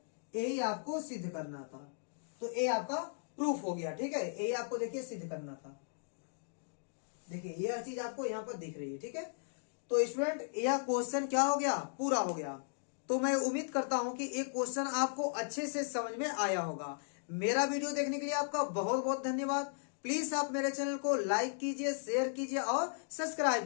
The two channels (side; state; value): right; silent; digital silence